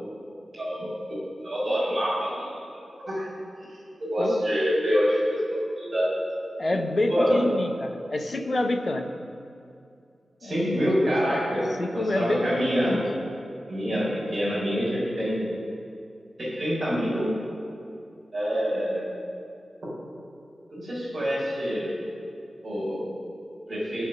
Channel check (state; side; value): normal; both; correlation 0.94